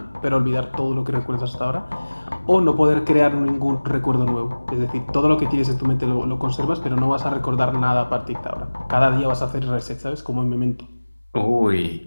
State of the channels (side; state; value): both; inverted; correlation -1.00